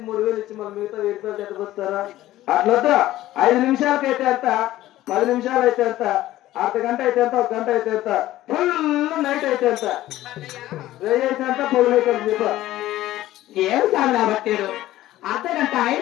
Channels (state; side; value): quieter; right; 15.1 dB